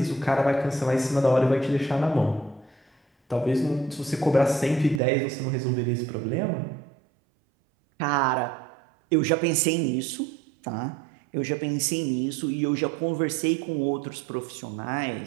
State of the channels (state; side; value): drops out; left; at 5.0 s